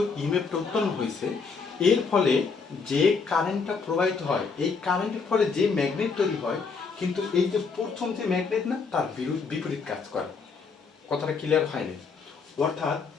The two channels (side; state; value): right; quieter; 5.0 dB